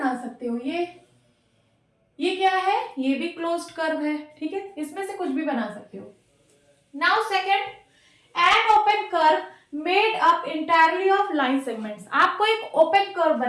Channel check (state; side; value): identical; both; correlation 1.00